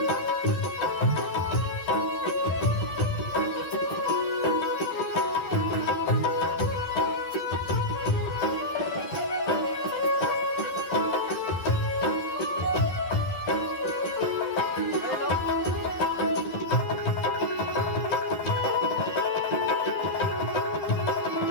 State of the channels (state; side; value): late; right; 11 ms